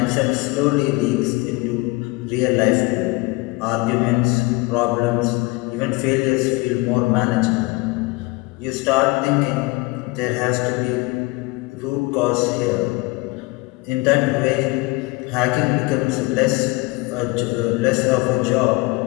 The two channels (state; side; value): quieter; right; 23.7 dB